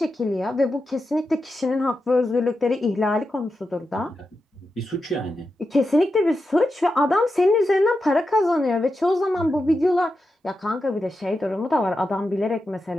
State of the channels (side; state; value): both; normal; correlation 0.89